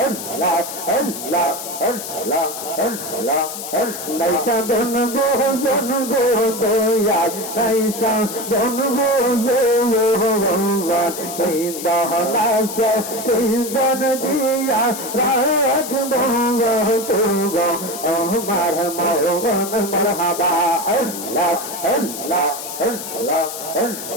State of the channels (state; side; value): noise; left; hiss, 8 dB below the sound